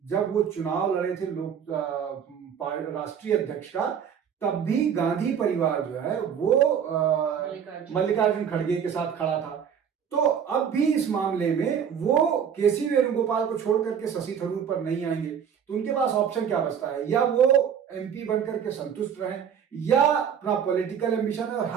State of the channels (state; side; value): quieter; left; 7.9 dB